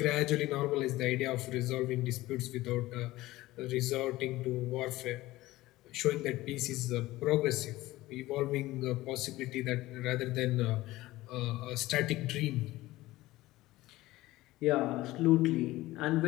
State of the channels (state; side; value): quieter; right; 17.7 dB